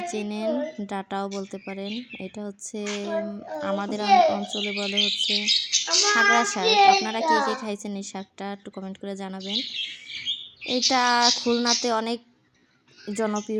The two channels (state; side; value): identical; both; correlation 1.00